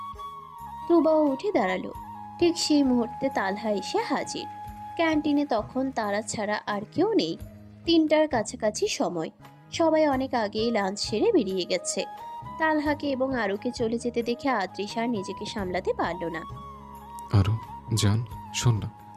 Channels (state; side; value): identical; both; correlation 1.00